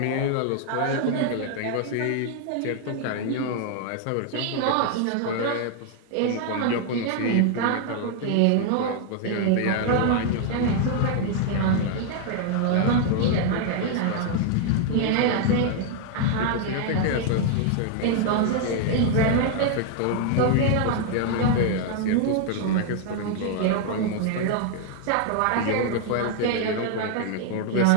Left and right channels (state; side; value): different; both; correlation 0.00